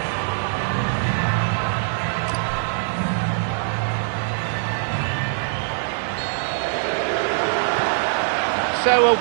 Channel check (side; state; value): left; silent; digital silence